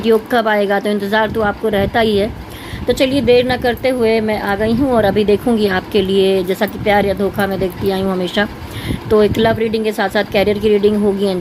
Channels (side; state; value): both; identical; correlation 1.00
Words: कब आएगा, तो इंतज़ार तो आपको रहता ही है। तो चलिए देर न करते हुए मैं आ गई हूँ और अभी देखूँगी आपके लिए, जैसा कि प्यार या धोखा मैं देखती आई हूँ हमेशा। तो एक लव रीडिंग के साथ साथ कैरियर की रीडिंग होगी,